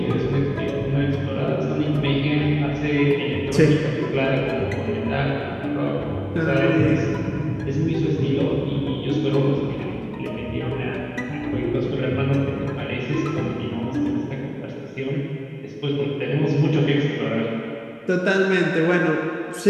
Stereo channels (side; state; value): both; identical; correlation 1.00